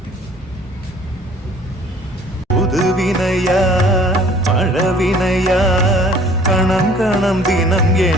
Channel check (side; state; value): both; normal; correlation 0.54